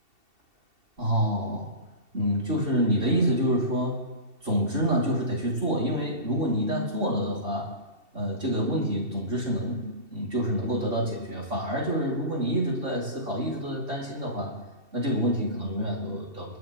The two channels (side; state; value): left; late; 2.7 ms